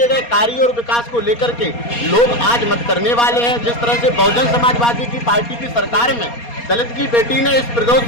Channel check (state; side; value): late; right; 4.2 ms